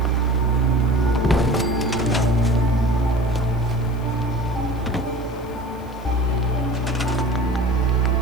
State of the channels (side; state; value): left; noise; hiss, 27 dB below the sound